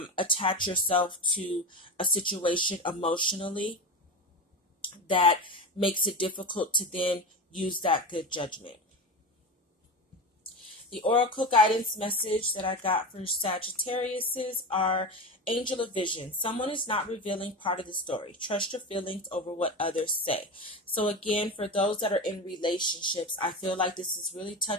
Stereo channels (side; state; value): both; normal; correlation 0.24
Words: attach yourself to a situation emotionally that makes it difficult to then use that good judgment. The oracle guidance message that I got for Sagittarius are Angel of Vision. Someone is not revealing part of the story. Trust your feelings over what others say. So again, for those that are in relationships, I feel like this is really